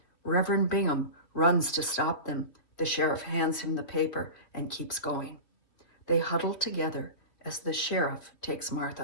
Reverend Bingham runs to stop them. The sheriff hands him the paper and keeps going. They huddle together as the sheriff takes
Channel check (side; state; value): right; late; 2.8 ms